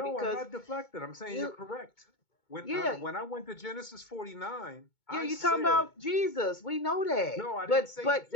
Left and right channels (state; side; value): late; right; 2.2 ms